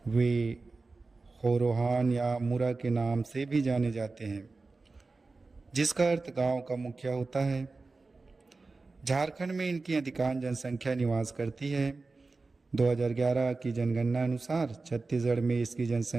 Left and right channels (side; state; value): left; quieter; 3.7 dB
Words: वे होरोहान या मुरा के नाम से भी जाने जाते हैं, जिसका अर्थ गांव का मुखिया होता है। झारखंड में इनकी अधिकांश जनसंख्या निवास करती है। 2011 की जनगणना अनुसार छत्तीसगढ़ में इसकी